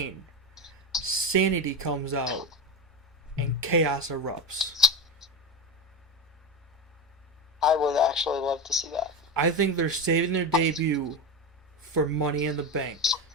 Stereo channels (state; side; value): normal; both; correlation 0.19